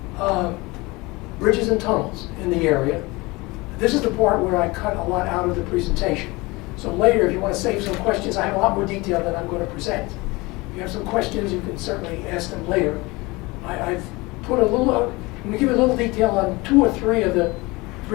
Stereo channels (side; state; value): right; quieter; 23.4 dB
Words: bridges and tunnels in the area. This is the part where I cut a lot out of the presentation. So later, if you want to save some questions, I have a lot more detail than I'm going to present. If you have some questions, you can certainly ask them later. I've put a little, I'm going to give you a little detail on 2 or 3 of the